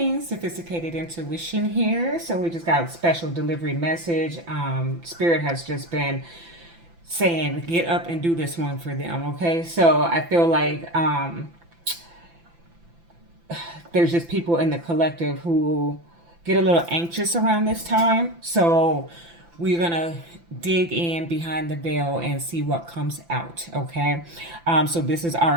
sophisticated intuition here. So we just got a special delivery message. Spirit has just been saying, get up and do this one for them. Okay, so I feel like there's just people in the collective who get a little anxious around this time. So we're gonna dig in behind the veil and see what comes out. Okay, so this is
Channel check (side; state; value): left; late; 5.9 ms